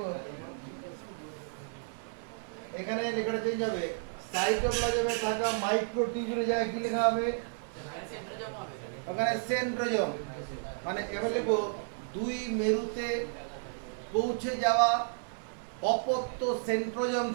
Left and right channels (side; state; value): left; silent; 56 dB below the other